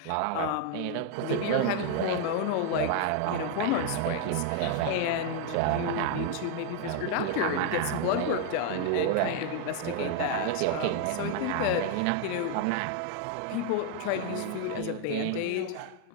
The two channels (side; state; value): both; different; correlation 0.00